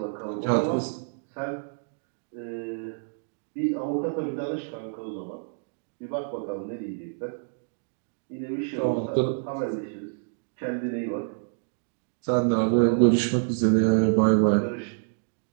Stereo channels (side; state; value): left; silent; digital silence